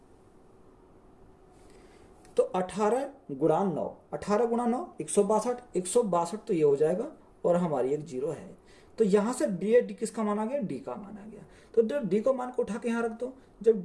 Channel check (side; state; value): both; identical; correlation 1.00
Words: तो 18 गुणा 9, 18 गुणा 9 162। 162 तो ये हो जाएगा और हमारी एक 0 है। तो यहां से डी किसका मान आ गया? डी का मान आ गया। तो जब डी को मान को उठा के यहां रख दो, जब